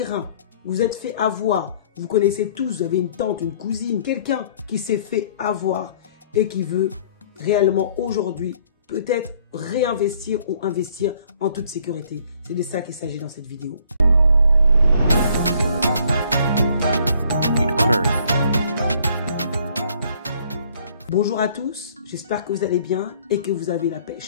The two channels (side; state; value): both; inverted; correlation -0.60